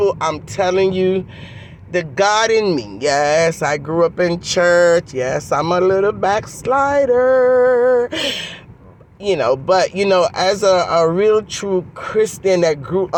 I'm telling you, the God in me. Yes, I grew up in church. Yes, I'm a little backslider. But as a real true Christian that grew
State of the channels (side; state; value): both; identical; correlation 1.00